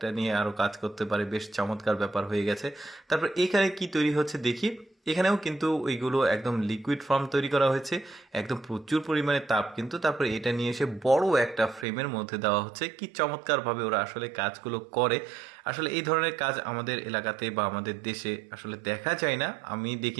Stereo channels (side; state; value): left; drops out; at 11.9 s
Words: নিয়ে আরও কাজ করতে পারে। বেশ চমৎকার ব্যাপার হয়ে গেছে। তারপর এখানে কি তৈরি হচ্ছে দেখি। এখানেও কিন্তু ওইগুলো একদম লিকুইড ফর্ম তৈরি করা হয়েছে, একদম প্রচুর পরিমাণে তাপ কিন্তু। তারপরে এটা নিয়ে এসে বড় একটা ফ্রেমের মধ্যে দেওয়া হচ্ছে। কি চমৎকারভাবে ওরা আসলে কাজগুলো করে। আসলে এই ধরনের কাজ আমাদের এলাকাতে বা আমাদের দেশে আসলে দেখা যায় না। আমি